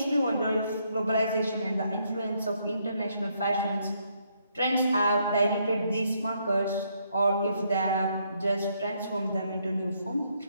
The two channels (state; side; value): inverted; both; correlation -0.73